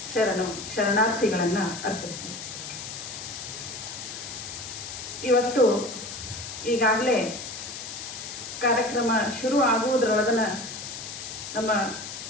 ಶರಣಾರ್ಥಿಗಳನ್ನು ಅರ್ಪಿಸ್ತೀನಿ. ಇವತ್ತು ಈಗಾಗಲೇ ಕಾರ್ಯಕ್ರಮ ಶುರು ಆಗುವುದರೊಳಗನ ನಮ್ಮ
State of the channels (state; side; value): noise; left; hiss, 9 dB below the sound